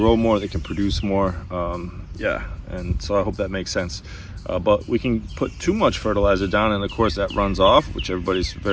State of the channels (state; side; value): identical; both; correlation 1.00